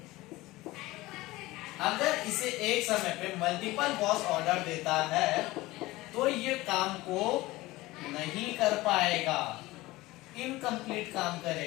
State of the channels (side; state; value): right; quieter; 19.2 dB